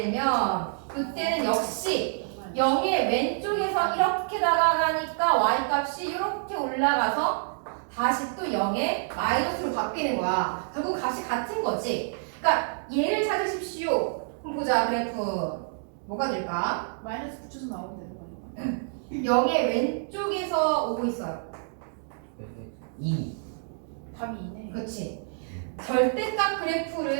이때는 역시 0의 왼쪽에서 이렇게 다가가니까 y 값이 이렇게 올라가서 다시 또 0의 마이너스로 바뀌는 거야. 결국 값이 같은 거지. 그러니까 얘를 찾으십시오. 그럼 보자 그래프. 뭐가 될까? 마이너스 붙여서 나오면 되는 거니까. 0의 왼쪽에서 오고 있어요. 2. 답이 2네. 그렇지. 절대값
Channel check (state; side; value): silent; left; digital silence